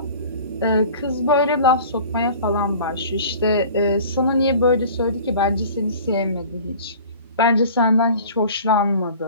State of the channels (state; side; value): inverted; both; correlation -0.44